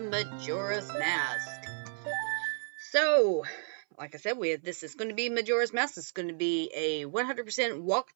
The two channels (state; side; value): silent; left; 56 dB below the other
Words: Mask. So, like I said, this is going to be Majora's Mask. It's going to be a 100%